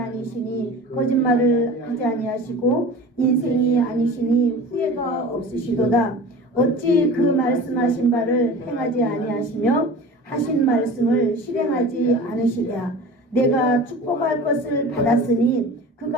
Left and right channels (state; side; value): normal; both; correlation 0.37